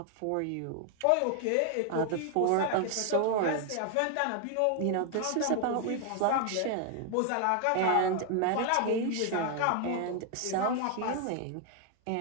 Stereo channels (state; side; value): different; both; correlation 0.00